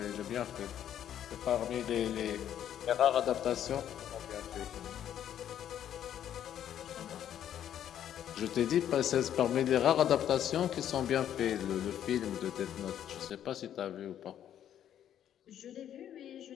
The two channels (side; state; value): right; quieter; 10.3 dB